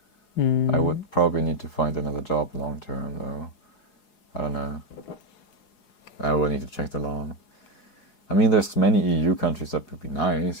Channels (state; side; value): late; right; 4.8 ms